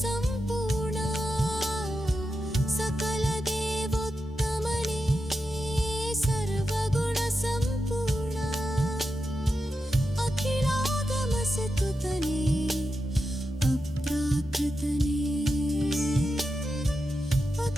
ಸಂಪೂರ್ಣ ಸಕಲ ದೇವೋತ್ತಮನೇ ಸರ್ವಗುಣ ಸಂಪೂರ್ಣ ಅಖಿಲಾಗಮ ಸತುತನೇ ಅಪ್ರಾಕೃತನೇ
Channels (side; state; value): both; normal; correlation 0.88